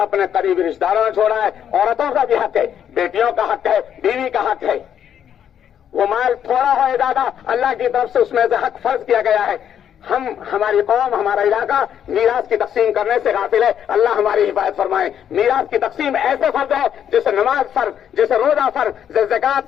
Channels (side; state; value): right; quieter; 9.2 dB